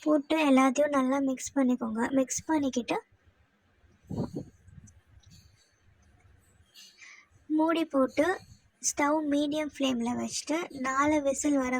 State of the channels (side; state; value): both; identical; correlation 1.00